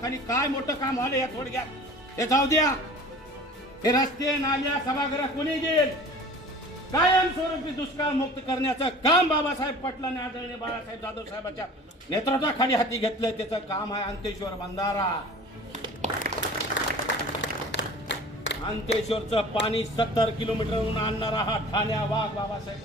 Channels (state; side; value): normal; both; correlation 0.43